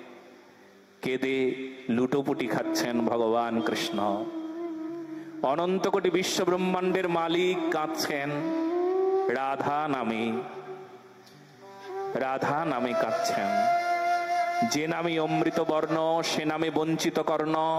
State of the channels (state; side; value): identical; both; correlation 1.00